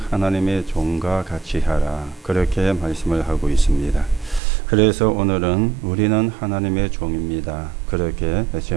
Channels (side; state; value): left; drops out; at 4.4 s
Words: 하나님의 종과 같이 하라. 그렇게 말씀을 하고 있습니다. 그래서 오늘은 우리는 하나님의 종입니다. 그렇게